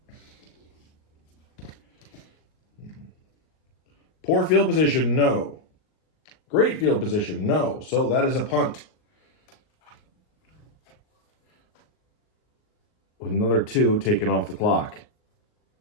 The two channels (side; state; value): right; late; 38 ms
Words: Poor field position, no. Great field position, no. So that is a punt. With another 2 taken off the clock.